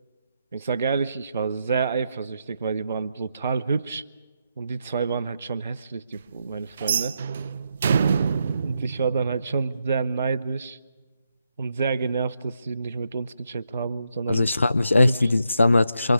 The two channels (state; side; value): inverted; both; correlation -0.82